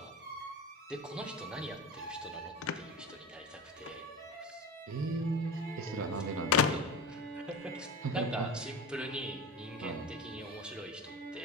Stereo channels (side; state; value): both; normal; correlation 0.29